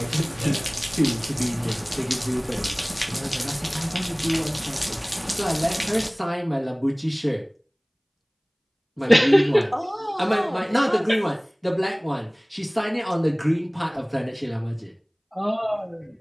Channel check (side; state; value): both; identical; correlation 1.00